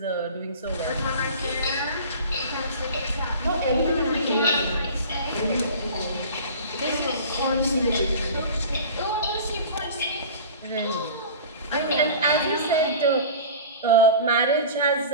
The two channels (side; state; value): both; inverted; correlation -0.38